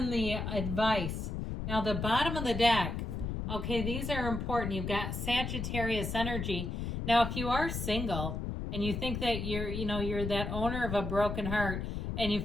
the advice. Now, the bottom of the deck, okay, these are important. You've got Sagittarius energy. Now, if you are single and you think that you're that owner of a broken heart and you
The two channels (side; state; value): left; noise; rumble, 3 dB below the sound